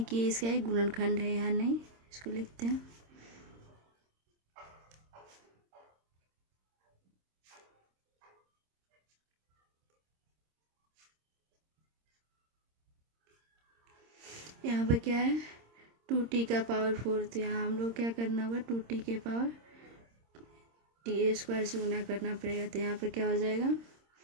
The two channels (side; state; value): left; late; 26 ms